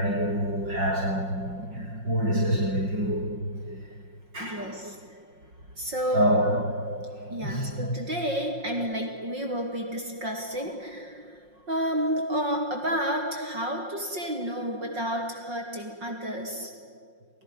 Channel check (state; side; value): late; left; 5.6 ms